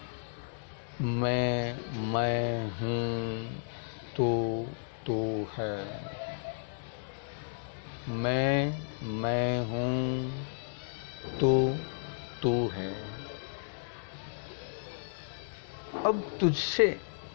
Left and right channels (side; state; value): right; silent; digital silence